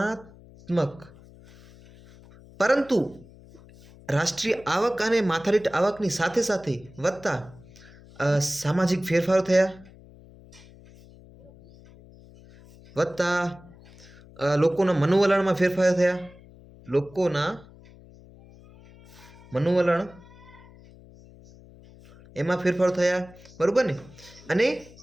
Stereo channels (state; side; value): noise; left; hum, 23 dB below the sound